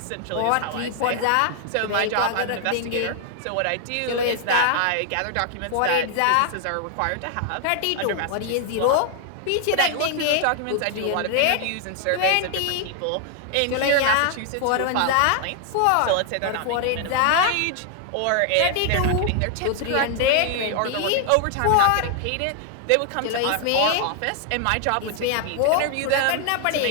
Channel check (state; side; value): different; both; correlation 0.00